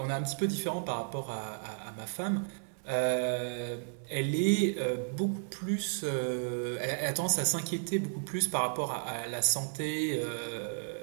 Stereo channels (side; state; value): left; silent; digital silence